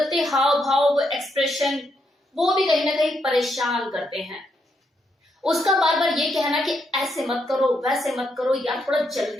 हाव भाव, वो एक्सप्रेशन, वो भी कहीं ना कहीं परेशान करते हैं। उसका बार बार ये कहना कि ऐसे मत करो, वैसे मत करो, या थोड़ा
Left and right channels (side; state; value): both; normal; correlation 0.78